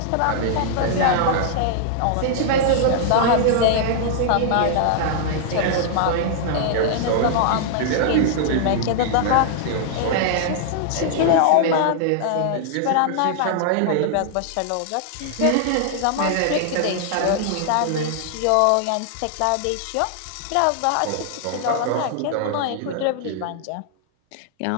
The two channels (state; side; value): different; both; correlation -0.01